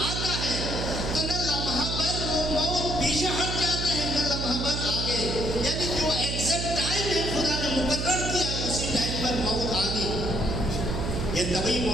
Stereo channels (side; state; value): right; noise; hum, 3 dB below the sound